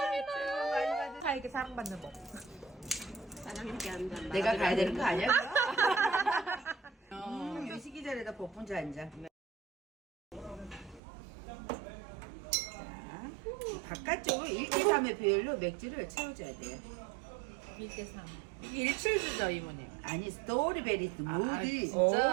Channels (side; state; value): left; drops out; at 11.0 s